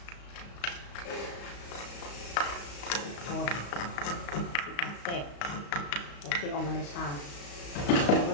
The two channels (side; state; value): right; late; 35 ms